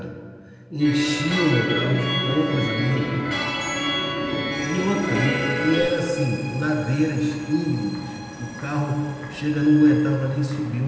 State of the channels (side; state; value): both; identical; correlation 1.00